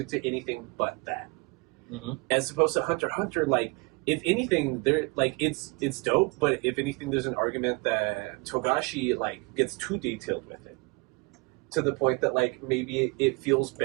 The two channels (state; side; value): quieter; left; 28.3 dB